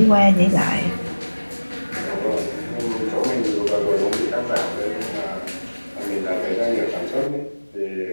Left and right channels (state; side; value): inverted; both; correlation -1.00